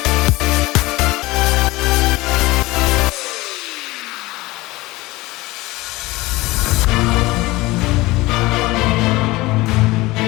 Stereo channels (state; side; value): quieter; right; 20.3 dB